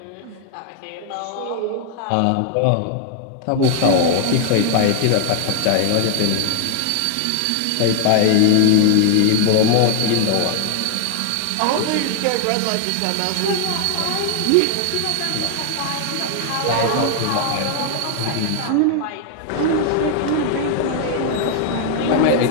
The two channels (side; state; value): both; different; correlation 0.00